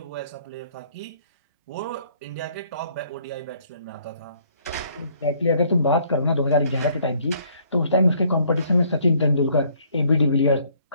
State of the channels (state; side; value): inverted; both; correlation -0.63